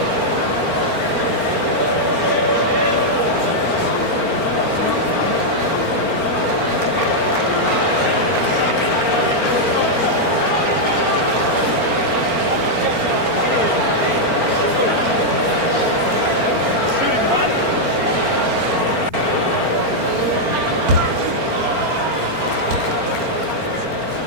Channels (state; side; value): late; left; 4.4 ms